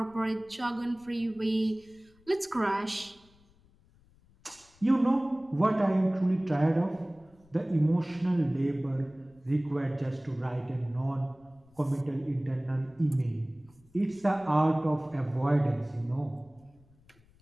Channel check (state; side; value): noise; left; rumble, 29 dB below the sound